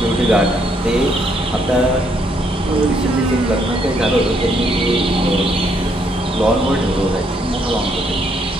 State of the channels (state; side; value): normal; both; correlation 0.71